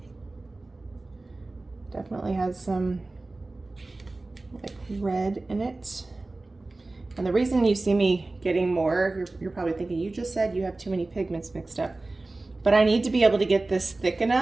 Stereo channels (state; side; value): quieter; left; 3.1 dB